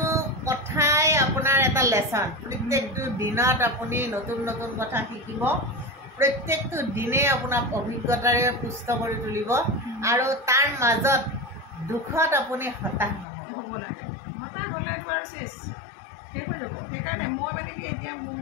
কথাই আপোনাৰ এটা লেচন। প্ৰত্যেকটো দিনত আপুনি নতুন নতুন কথা শিকিব। প্ৰত্যেকটো দিনেই আপোনাক অভিজ্ঞতাৰে পুষ্ট কৰি তুলিব, আৰু তাৰ মাজত দুখত আপুনি হতাশ নহ'ব লাগে। হতাশ হ'লেতো আৰু শেষ হৈ যাব। সেইকাৰণে মই মানে কি, এতিয়া মোৰ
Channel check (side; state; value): right; drops out; at 13.2 s